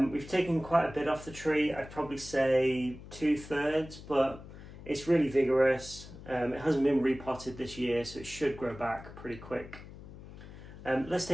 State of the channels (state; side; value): noise; left; hum, 15 dB below the sound